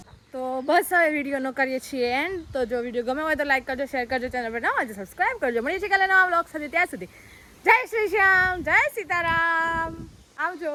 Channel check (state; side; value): identical; both; correlation 1.00